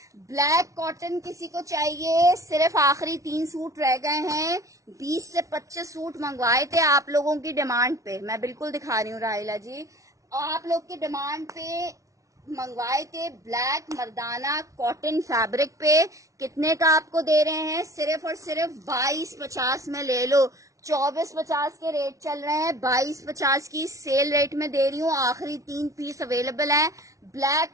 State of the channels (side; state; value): left; late; 0.16 ms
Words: ब्लैक कॉटन किसी को चाहिए, सिर्फ आखिरी 3 सूट रह गए हैं, 20 से 25 सूट मंगवाए थे आप लोगों की डिमांड पे, मैं बिल्कुल दिखा रही हूँ राहिला जी, आप लोग की डिमांड पे मंगवाए थे। ब्लैक मर्दाना कॉटन फैब्रिक पे कितने का आपको दे रहे हैं, सिर्फ और सिर्फ 2250 में ले लो। 2450 के रेट चल रहे हैं, 2250 की सेल रेट में दे रही हूँ। आखिरी 3 पीस अवेलेबल हैं,